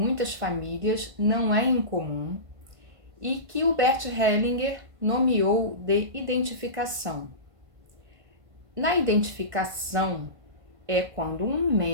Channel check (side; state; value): left; late; 1.5 ms